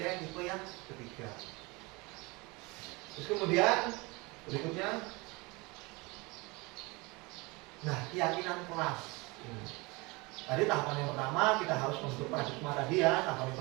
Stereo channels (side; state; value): left; quieter; 25.4 dB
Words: yang tipe yang ketiga. Terus kemudian berikutnya, nah keyakinan kelas. Tadi tahapan yang pertama kita harus membentuk paradigma tadi ya, tahapan yang